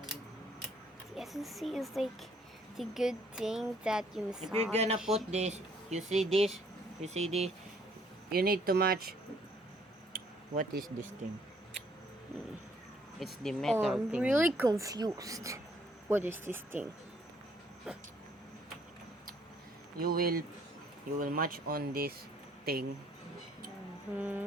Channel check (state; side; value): normal; both; correlation 0.64